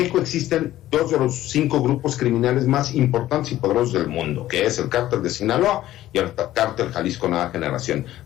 existen 2 de los 5 grupos criminales más importantes y poderosos del mundo, que es el Cártel de Sinaloa y el Cártel Jalisco Nueva Generación,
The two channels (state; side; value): quieter; right; 14.2 dB